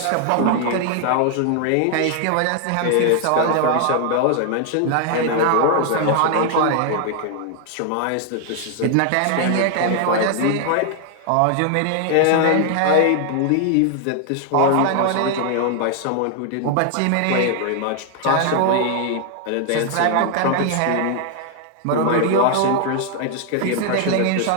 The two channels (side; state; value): both; different; correlation 0.00